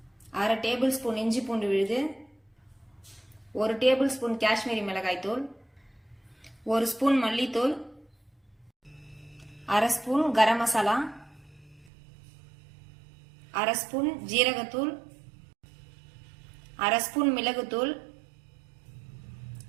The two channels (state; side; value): drops out; left; at 11.9 s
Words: 1/2 டேபிள் ஸ்பூன் இஞ்சி பூண்டு விழுது, 1 டேபிள் ஸ்பூன் காஷ்மீரி மிளகாய் தூள், 1 ஸ்பூன் மல்லித்தூள், 1/2 ஸ்பூன் கரம் மசாலா, 1/2 ஸ்பூன் ஜீரகத்தூள், 1/2 ஸ்பூன் மிளகுத்தூள்,